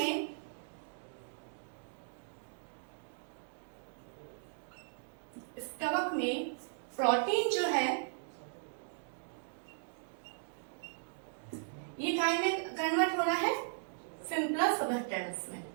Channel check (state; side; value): silent; left; digital silence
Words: में प्रोटीन जो है ये काय में कन्वर्ट हो रहा है, सिंपलर सबस्टेंस में।